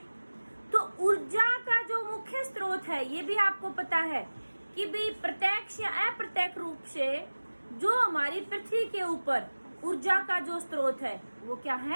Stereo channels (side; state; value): both; inverted; correlation -1.00